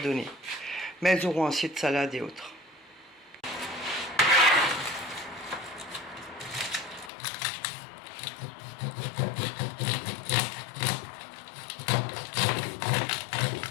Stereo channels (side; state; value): right; drops out; at 7.1 s